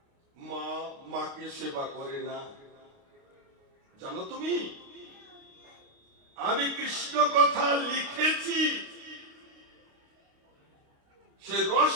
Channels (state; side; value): late; left; 29 ms